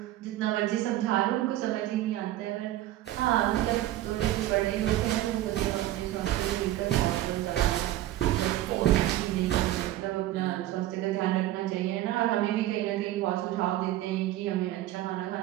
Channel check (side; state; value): left; quieter; 14.4 dB